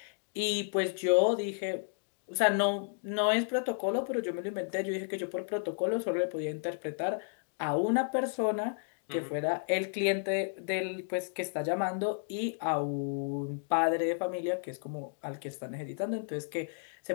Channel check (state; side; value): silent; right; digital silence